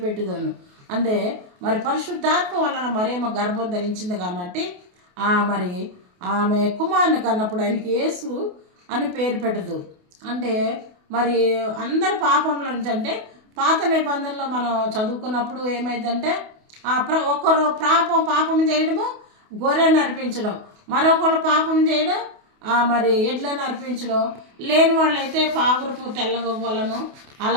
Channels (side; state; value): left; late; 28 ms